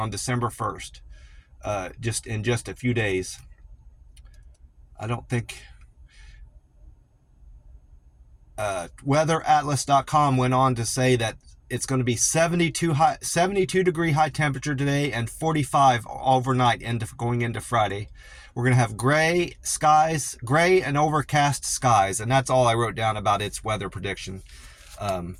December 1st, just in just a few days. I don't think weatheratlas.com went on to say that it's going to be 72 degree high temperature today and 45 overnight going into Friday. We're going to have gray and overcast skies, and that's all I wrote down about its weather prediction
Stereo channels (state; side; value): identical; both; correlation 1.00